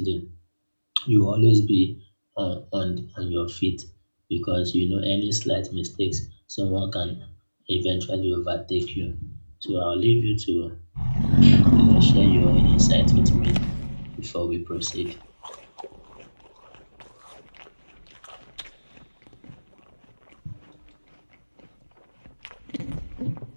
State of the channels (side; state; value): both; inverted; correlation -1.00